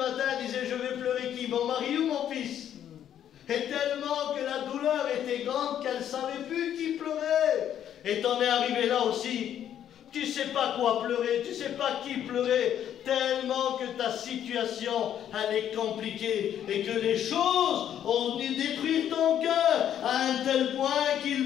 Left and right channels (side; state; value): right; quieter; 10.1 dB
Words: elle disait, je vais pleurer qui? Mon mari ou mon fils? Et tellement que la douleur était grande qu'elle ne savait plus qui pleurait. Et t'en es arrivé là aussi. Tu ne sais pas quoi pleurer, tu ne sais pas qui pleurer, tellement que ta situation, elle est compliquée et que les choses ont venu détruire ton cœur à un tel point